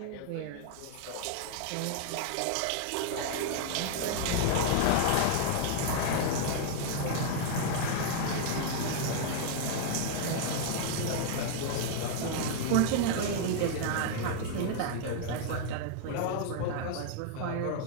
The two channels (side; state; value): both; different; correlation 0.00